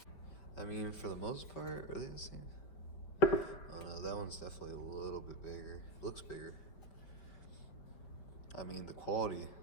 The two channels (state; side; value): late; right; 5.1 ms